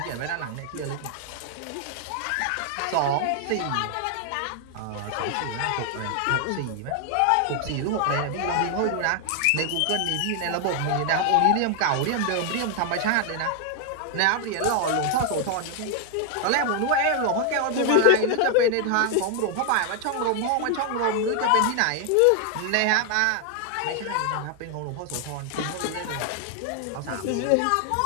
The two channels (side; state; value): both; different; correlation 0.00